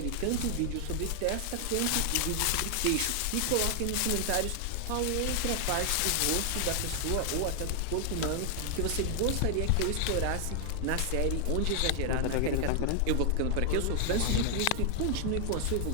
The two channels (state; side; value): different; both; correlation 0.00